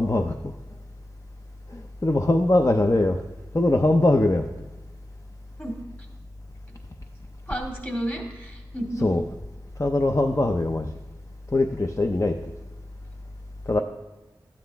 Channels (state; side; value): normal; both; correlation 0.92